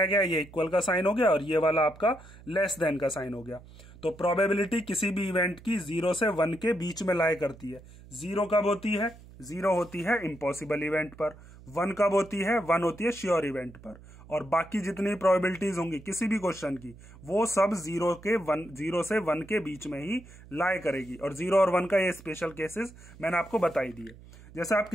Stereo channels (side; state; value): right; noise; hum, 20 dB below the sound